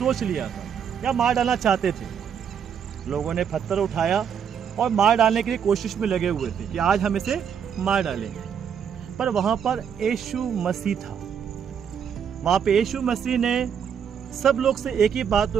लिया था या मार डालना चाहते थे। लोगों ने पत्थर उठाया और मार डालने के लिए कोशिश में लगे हुए थे कि आज हम इसे मार डालेंगे। पर वहाँ पर यीशु मसीह था। वहाँ पे यीशु मसीह ने सब लोग से एक ही बात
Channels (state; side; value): quieter; left; 7.8 dB